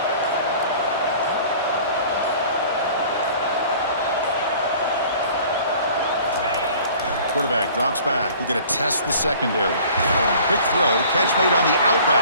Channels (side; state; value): both; inverted; correlation -0.49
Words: Quarterback drops back. We're going to test the secondary. Quick throw. Catch made on the out